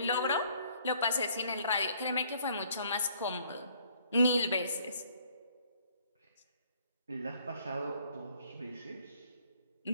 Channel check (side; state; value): both; inverted; correlation -0.62